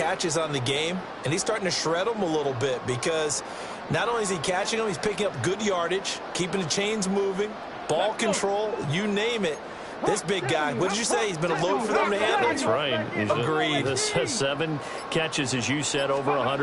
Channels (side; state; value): both; identical; correlation 1.00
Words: on the game, and he's starting to shred them a little bit, because not only is he catching them, he's picking up good yardage, keeping the chains moving, ball control, you name it. This big guy, what did you say? He's been a load for them to handle? That's right. Agreed. 7 catches, as you said, over